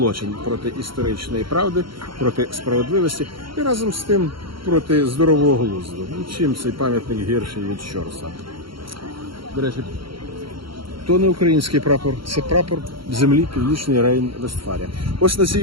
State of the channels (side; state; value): left; late; 0.74 ms